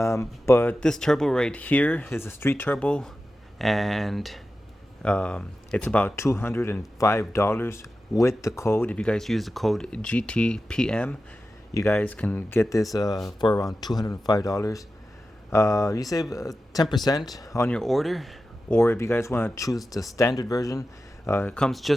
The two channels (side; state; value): both; normal; correlation 0.93